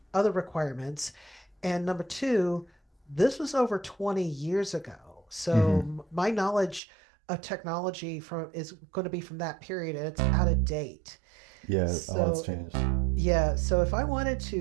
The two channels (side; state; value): left; drops out; at 6.8 s